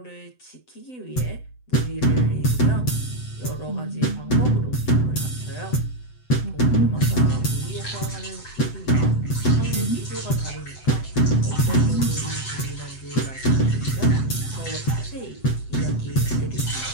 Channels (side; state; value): right; late; 7.9 ms